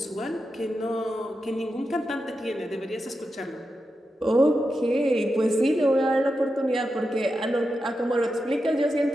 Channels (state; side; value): normal; both; correlation 0.89